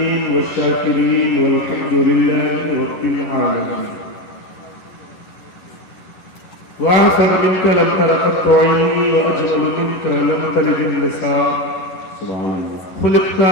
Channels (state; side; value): late; right; 11 ms